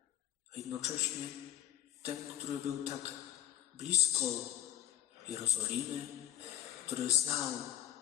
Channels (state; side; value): quieter; right; 12.2 dB